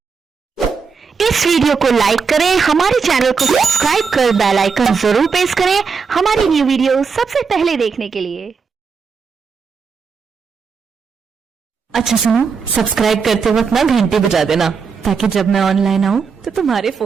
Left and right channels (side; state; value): left; quieter; 5.5 dB